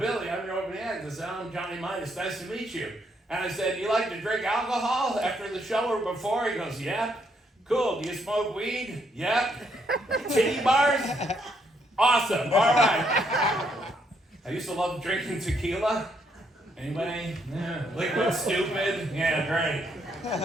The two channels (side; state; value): both; normal; correlation 0.73